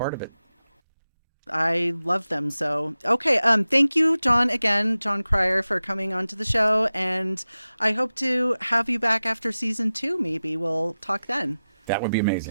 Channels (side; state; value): both; inverted; correlation -0.95